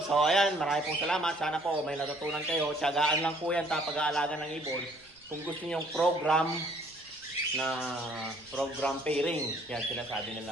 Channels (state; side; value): noise; right; rumble, 29 dB below the sound